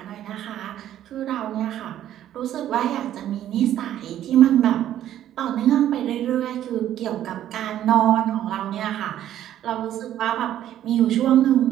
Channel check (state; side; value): quieter; left; 11.8 dB